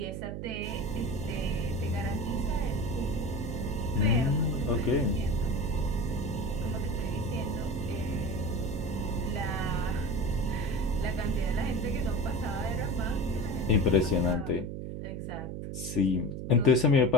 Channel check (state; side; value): noise; right; hum, 6 dB below the sound